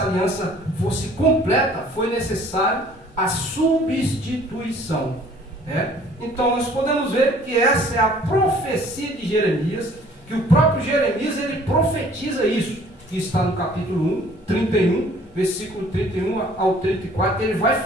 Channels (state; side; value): noise; left; rumble, 27 dB below the sound